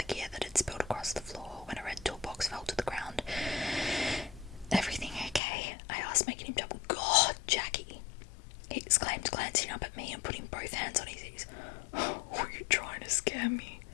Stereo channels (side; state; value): right; drops out; at 5.4 s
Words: gear that had spilled across the floor when a red toolbox fell to the ground. "Everything okay?" I asked, making him jump. "God, Jackie!" he exclaimed, glancing up at me and putting both hands on his ears. "Were you trying to scare me?"